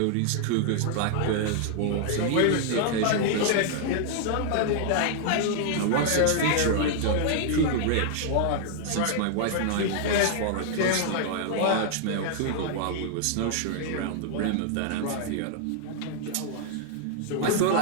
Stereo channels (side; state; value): both; different; correlation -0.01